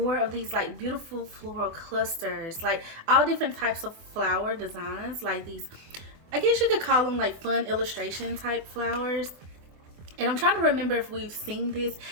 of these like beautiful floral clusters, like all different types of flower designs, like these, I guess you could call them like fun illustration type flowers. And I'm trying to remember if we've seen this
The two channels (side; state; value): left; late; 24 ms